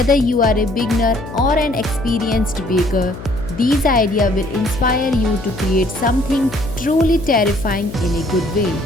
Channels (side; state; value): left; noise; hum, 12 dB below the sound